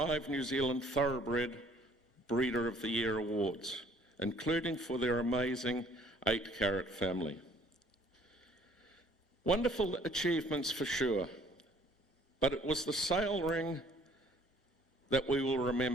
New Zealand Thoroughbred Breeder of the Year awards, including for their amazing 8-carat family. Wonderful achievements for sure, but it was the sale ring that we will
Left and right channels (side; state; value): both; normal; correlation 0.59